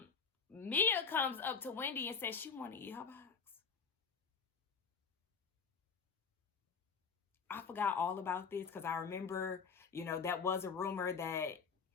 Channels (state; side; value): quieter; right; 5.7 dB